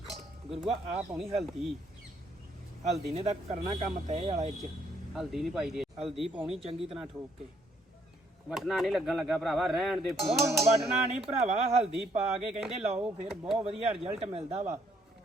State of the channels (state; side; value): normal; both; correlation 0.69